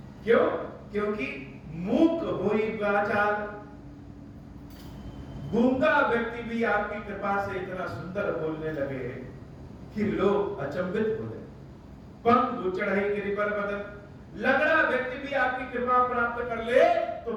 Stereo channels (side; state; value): both; identical; correlation 1.00